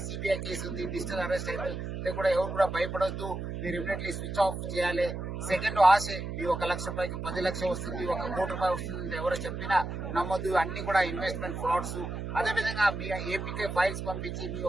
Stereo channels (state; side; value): noise; right; hum, 5 dB below the sound